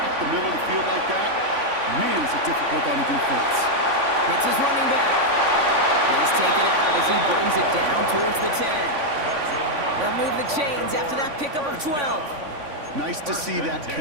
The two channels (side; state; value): left; late; 3.5 ms